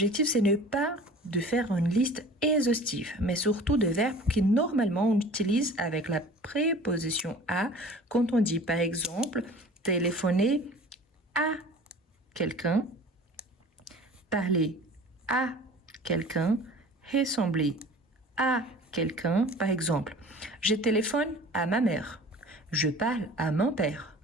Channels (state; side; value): normal; both; correlation 0.43